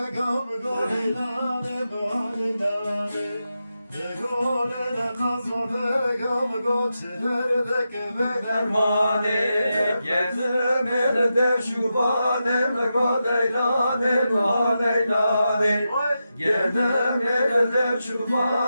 gam gole nane bane nane. Gole ne kazode gam goçlerde kebe Dermane gezim elde şubanem go leylane va leylane. Gezim elde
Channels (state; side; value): inverted; both; correlation -0.89